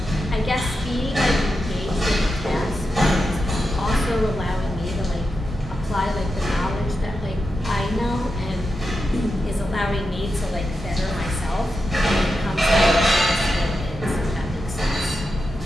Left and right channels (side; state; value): both; normal; correlation 0.89